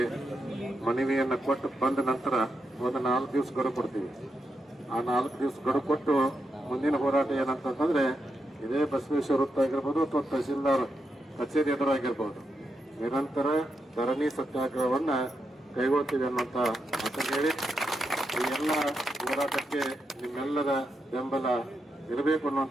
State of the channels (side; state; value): both; normal; correlation 0.84